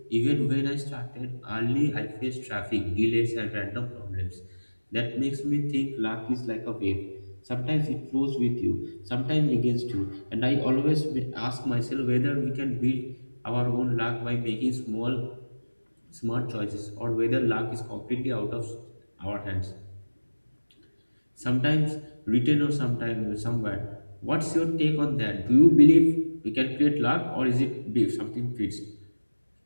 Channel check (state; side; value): inverted; both; correlation -1.00